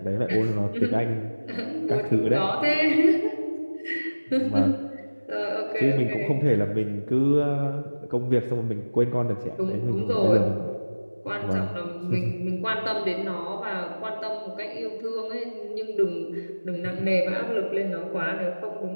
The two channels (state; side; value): inverted; both; correlation -1.00